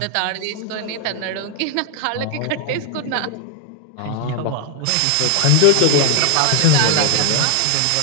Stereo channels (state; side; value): different; both; correlation 0.01